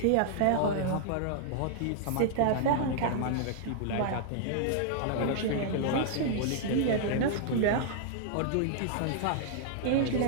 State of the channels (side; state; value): both; different; correlation -0.01